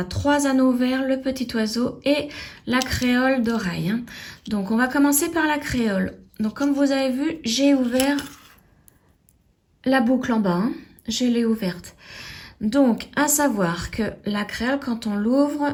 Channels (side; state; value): both; identical; correlation 1.00